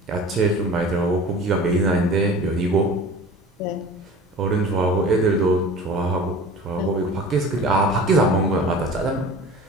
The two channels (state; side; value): normal; both; correlation 0.40